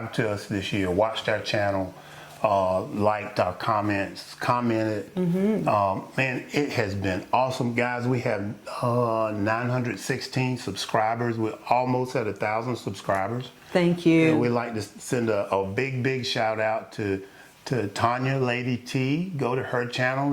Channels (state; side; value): identical; both; correlation 1.00